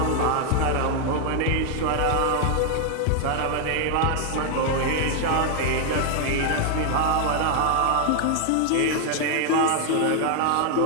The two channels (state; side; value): different; both; correlation 0.00